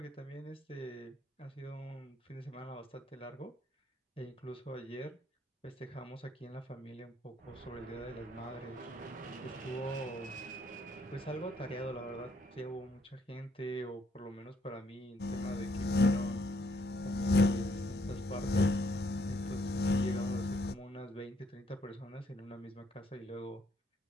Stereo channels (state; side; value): normal; both; correlation 0.70